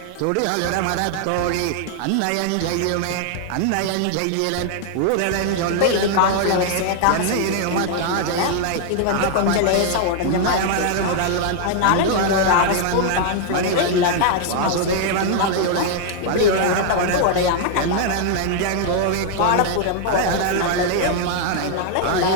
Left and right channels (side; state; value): both; different; correlation 0.00